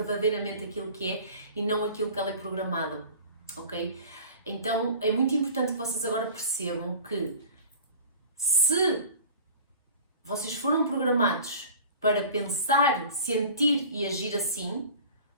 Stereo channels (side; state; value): both; inverted; correlation -0.41